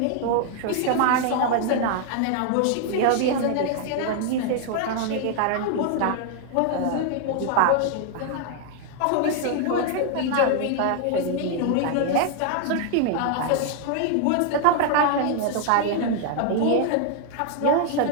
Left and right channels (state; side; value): different; both; correlation 0.00